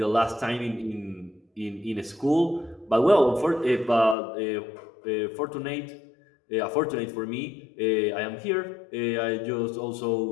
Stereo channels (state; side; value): drops out; right; at 4.2 s